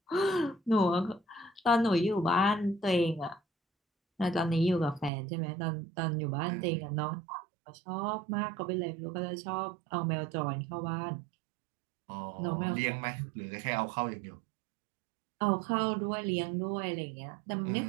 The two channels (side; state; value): left; drops out; at 5.1 s